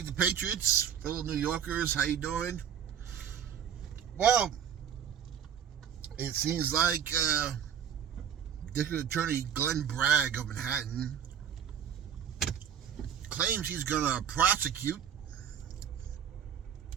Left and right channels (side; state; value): left; quieter; 8.6 dB